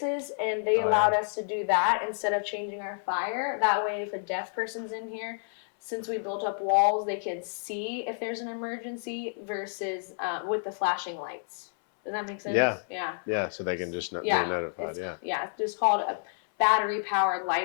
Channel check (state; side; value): silent; right; 58 dB below the other